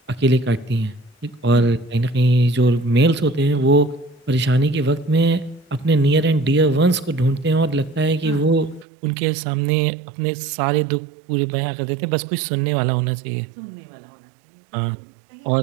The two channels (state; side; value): drops out; left; at 8.8 s